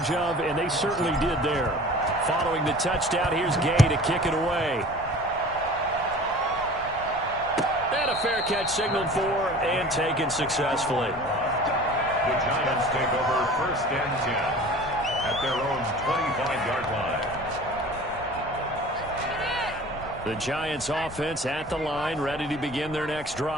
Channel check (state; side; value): noise; left; rumble, 16 dB below the sound